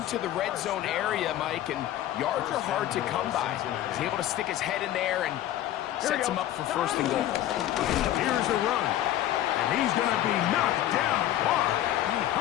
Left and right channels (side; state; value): right; quieter; 13.0 dB